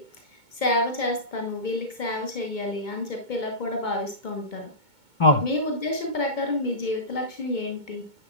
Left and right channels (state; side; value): late; right; 2.2 ms